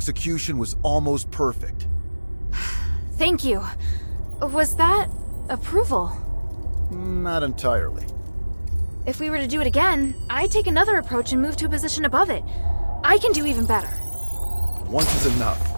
was almost perfect. Thank you. Was that approval? Not entirely. If we were to do it again, I'd take another approach and move to a position above it. I can do even better. Once is enough.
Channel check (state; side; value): inverted; both; correlation -1.00